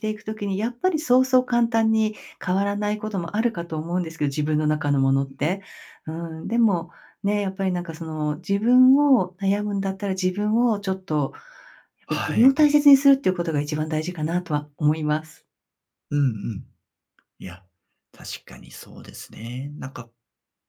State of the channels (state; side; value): identical; both; correlation 1.00